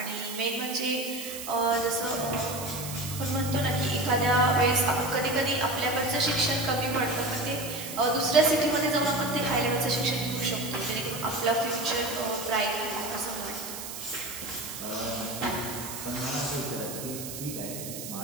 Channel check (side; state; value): right; noise; hiss, 9 dB below the sound